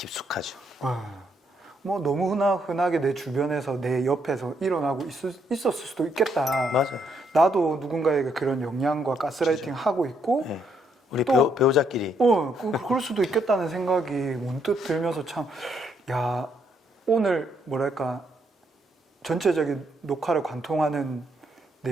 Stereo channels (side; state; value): both; normal; correlation 0.74